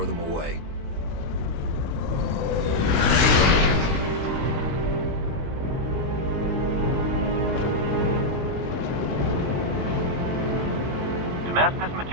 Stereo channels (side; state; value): left; late; 20 ms